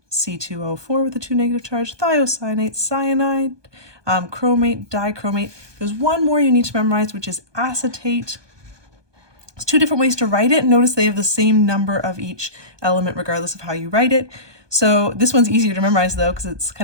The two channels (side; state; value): left; late; 1.2 ms